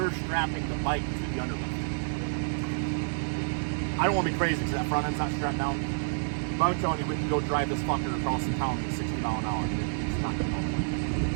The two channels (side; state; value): left; silent; digital silence